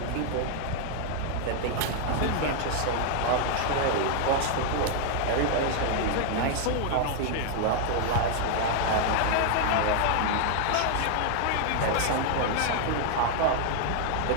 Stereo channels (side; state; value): both; different; correlation 0.00